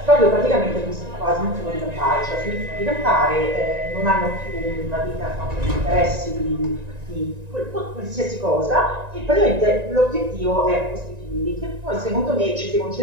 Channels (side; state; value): left; late; 1.9 ms